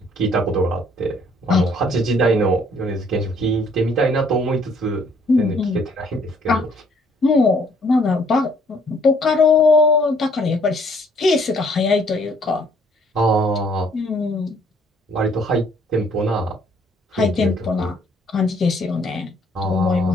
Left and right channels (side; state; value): both; normal; correlation 0.63